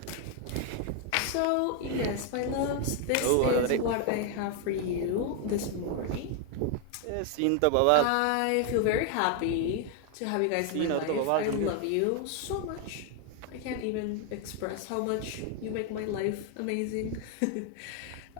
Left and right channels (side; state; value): both; different; correlation 0.01